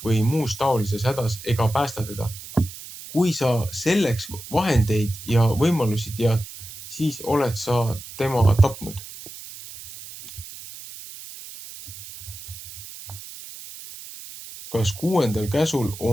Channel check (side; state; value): right; noise; hiss, 14 dB below the sound